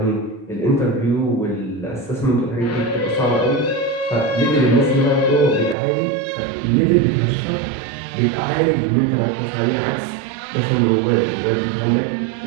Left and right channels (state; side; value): drops out; left; at 5.8 s